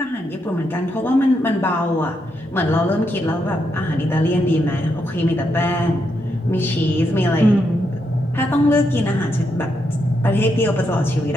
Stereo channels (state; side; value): normal; both; correlation 0.81